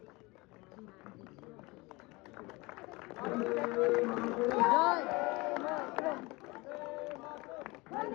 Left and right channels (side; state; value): right; quieter; 24.0 dB